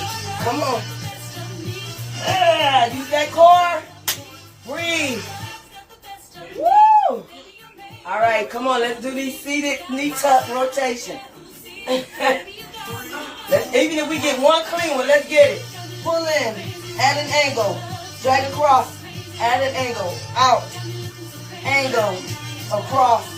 Come on. Use that core. Breathe. Woo! All right, come on. Let's do these seated knee tuck rotation. Even if we get one clean one, let's get it. Pull in at an angle. Drag across at an angle. Out. Angle. Across.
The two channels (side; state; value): both; identical; correlation 1.00